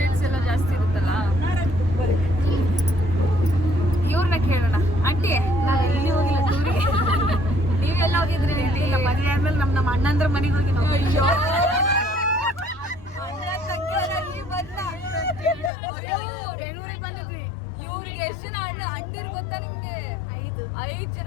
ಎಲ್ಲ ಜಾಸ್ತಿ ಇರುತ್ತಲ್ಲ. ಇವ್ರನ್ನ ಕೇಳೋಣ. ಆಂಟಿ, ನಾನು ಎಲ್ಲಿ ಹೋಗಿಲ್ಲ ಟೂರಿಗೆ. ನೀವೆಲ್ಲ ಹೋಗಿದ್ರಿ? ಇಲ್ಲ, ಮದುವೆ ಆದ್ಮೇಲೆ ನಮ್ಮ ಅಣ್ಣಂದ್ರ ಮನೆಗೆ ಹೋಗಿ ನಾವು. ಅಯ್ಯೋ, ಬೆಂಗಳೂರಿಗೆ ಬಂದಿದ್ವಿ. ಇವ್ರಿಗೆ ಎಷ್ಟು ಜನ ಅಂಟಿರು ಗೊತ್ತಾ ನಿಮ್ಗೆ? 5 ಜನ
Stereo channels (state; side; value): drops out; right; at 15.7 s